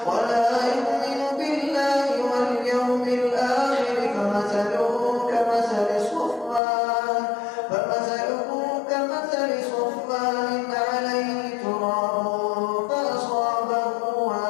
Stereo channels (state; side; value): drops out; right; at 6.6 s